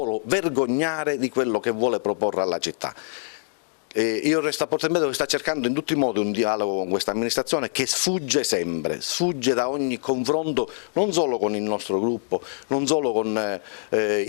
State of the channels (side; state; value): right; silent; digital silence